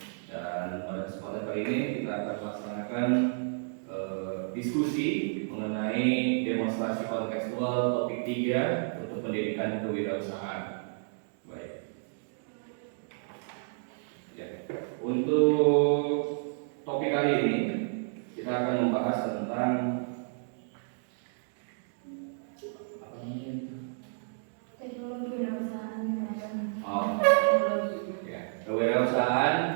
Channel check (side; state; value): left; silent; digital silence